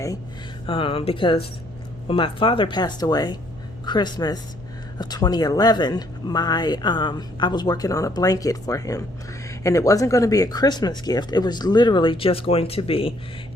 because when my father passed away, Christmas of 2011, I was working on a blanket for him. And it wasn't going to be a Christmas gift. It was literally just going to be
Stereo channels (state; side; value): noise; right; hum, 20 dB below the sound